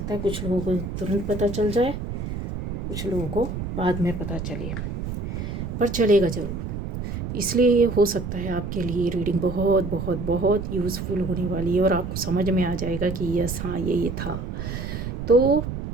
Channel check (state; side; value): noise; right; rumble, 5 dB below the sound